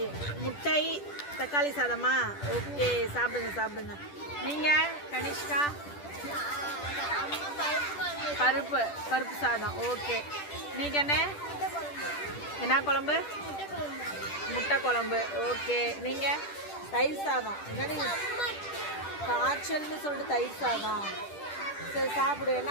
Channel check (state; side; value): late; right; 10 ms